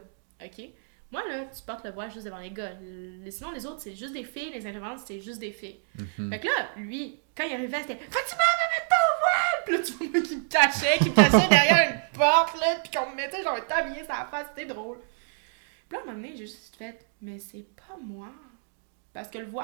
ok? Moi, là, tu portes le voile juste devant les gars. Sinon, les autres, c'est juste des filles. Les intervenants, c'est juste des filles. Fait que là, lui, quand il arrivait, c'était « Fatima, va mettre ton voile! » Puis là, tu vois qu'il me cachait derrière une porte, là, puis qu'on me mettait genre un tablier sur la face. C'était drôle. Puis là, à un moment donné, j'ai juste fait « Mais c'est pas moi. » Parce que le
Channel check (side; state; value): left; silent; digital silence